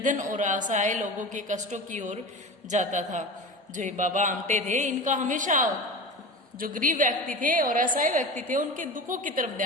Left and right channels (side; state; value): both; normal; correlation 0.30